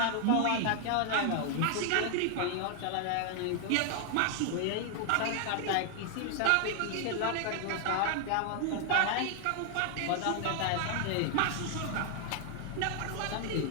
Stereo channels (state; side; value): different; both; correlation 0.00